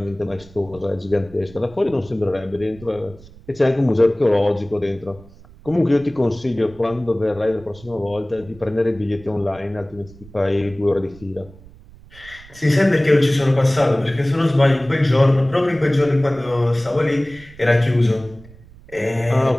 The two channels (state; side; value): noise; right; rumble, 22 dB below the sound